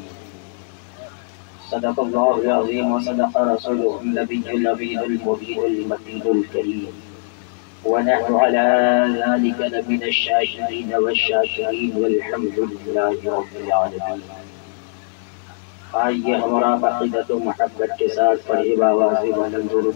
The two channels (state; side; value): silent; right; digital silence